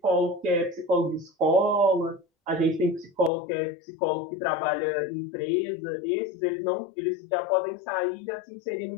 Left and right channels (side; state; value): right; drops out; at 3.3 s